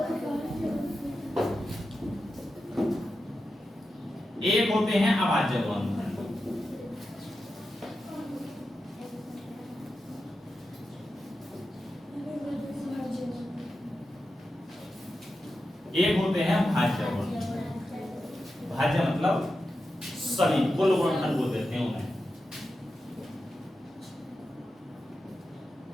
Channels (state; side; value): normal; both; correlation 0.90